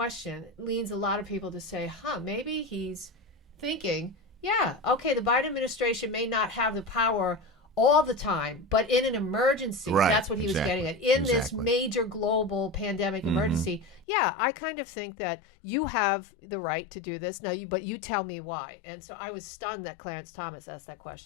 leads a lot of people to say, maybe he's thinking, yeah, okay, the Biden administration may not have the power all the time, but in an emergency, that's what he was getting at. In this major global pandemic emergency, I kind of think that you have the right to do this. But you tell me why. And so I was stunned that Clarence Thomas asked that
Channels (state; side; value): drops out; right; at 14.1 s